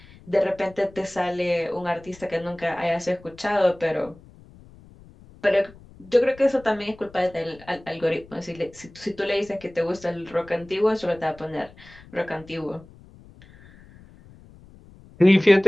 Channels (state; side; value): noise; left; rumble, 23 dB below the sound